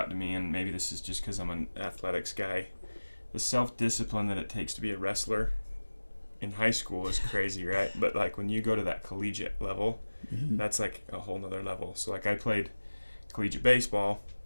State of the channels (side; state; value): both; inverted; correlation -1.00